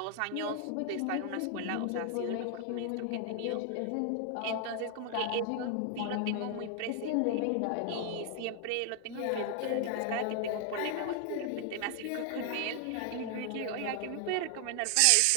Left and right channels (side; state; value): both; different; correlation 0.00